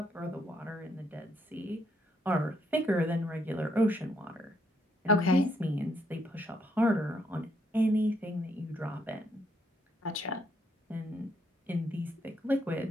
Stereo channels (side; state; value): both; normal; correlation 0.74